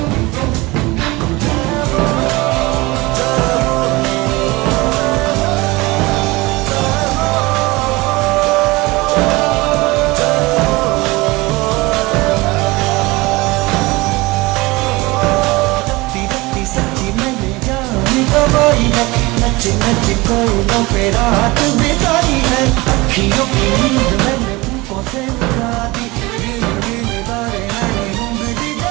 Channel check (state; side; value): quieter; left; 22.5 dB